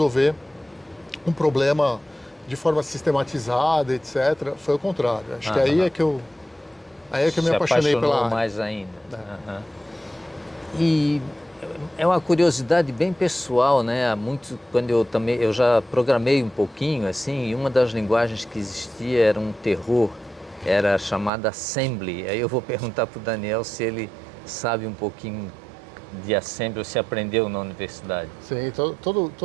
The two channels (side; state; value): left; drops out; at 21.3 s